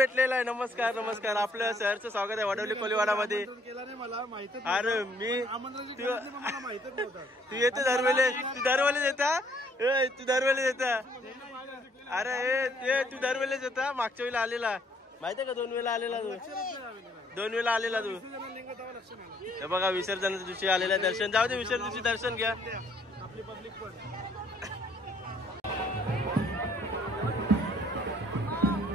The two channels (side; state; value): both; normal; correlation 0.65